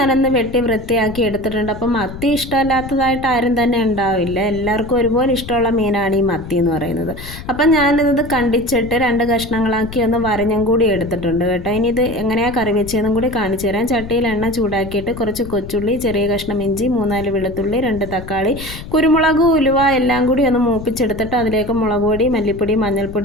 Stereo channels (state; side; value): noise; left; rumble, 12 dB below the sound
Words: വെട്ടി വൃത്തിയാക്കി എടുത്തിട്ടുണ്ട്. അപ്പം മത്തി ഇഷ്ടമല്ലാത്തതായിട്ട് ആരും തന്നെ ഉണ്ടാവില്ല. എല്ലാവർക്കും ഒരുപോലെ ഇഷ്ടമുള്ള മീനാണ് ഈ മത്തി എന്ന് പറയുന്നത്. അപ്പം ഞാനിത് കണ്ടിച്ചിട്ട് 2 കഷ്ണങ്ങളാക്കി ഒന്ന് വരഞ്ഞും കൂടി എടുത്തിട്ടുണ്ട് കേട്ടോ. ഇനി ഇത് എങ്ങനെയാണ് കറി വെച്ചതെന്നും കൂടി കാണിച്ചു തരാം. ചട്ടിയിൽ എണ്ണ ചൂടാക്കിയിട്ട് കുറച്ച് കൊച്ചുള്ളി, ചെറിയ കഷ്ണം ഇഞ്ചി, 3-4 വെളുത്തുള്ളി, 2 തക്കാളി, കുരുമുളക്, ഉലുവ എല്ലാം കൂടി ഒന്ന് മൂപ്പിച്ചെടുത്തിട്ട് അതിലേക്ക് മുളക് പൊടി, മല്ലിപ്പൊടി,